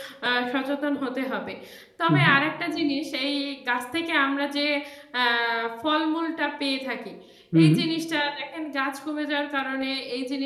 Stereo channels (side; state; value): both; identical; correlation 1.00